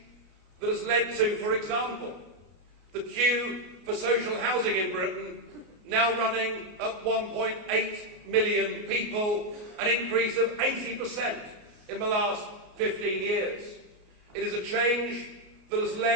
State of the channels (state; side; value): late; left; 33 ms